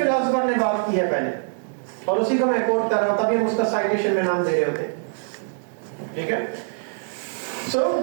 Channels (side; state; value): left; silent; digital silence